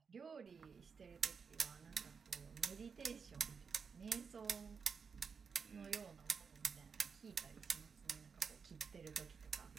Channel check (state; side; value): quieter; left; 5.8 dB